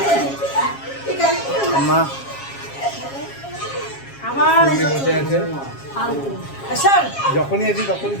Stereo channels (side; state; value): right; late; 7.3 ms